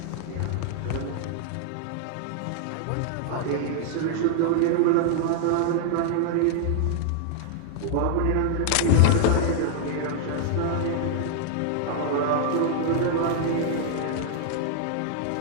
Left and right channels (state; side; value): different; both; correlation 0.00